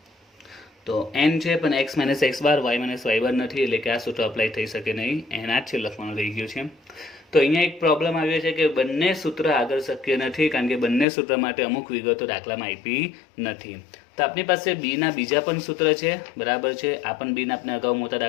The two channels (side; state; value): right; drops out; at 11.1 s